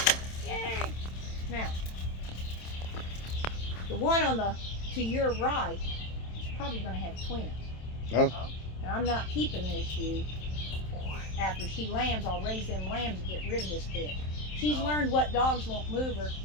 Yay. Now, the one to your right is probably going to have twins. Oh. And I'm not keeping this ewe. After she lambs, I'll raise them lambs and get rid of this bitch. She's learned what dogs won't move her,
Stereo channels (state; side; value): late; right; 27 ms